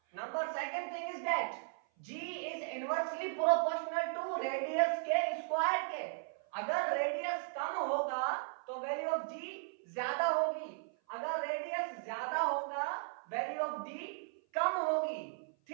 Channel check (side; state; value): left; silent; 53 dB below the other